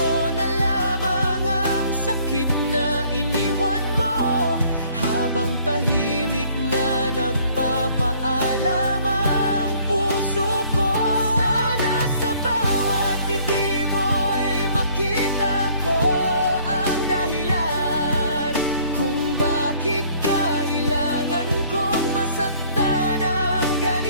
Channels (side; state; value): both; inverted; correlation -0.59